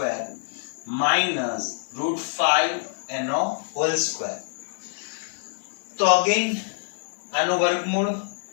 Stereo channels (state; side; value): silent; right; digital silence